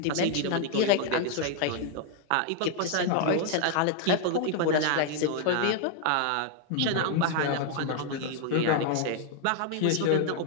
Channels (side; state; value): both; different; correlation 0.00